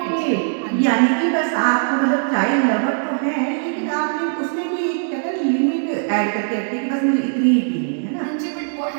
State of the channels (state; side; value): silent; left; digital silence